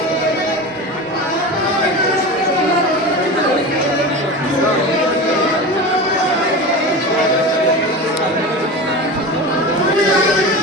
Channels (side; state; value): both; normal; correlation 0.28